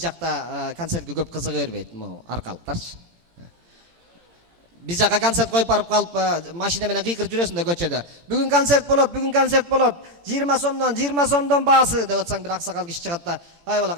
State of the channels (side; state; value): left; late; 18 ms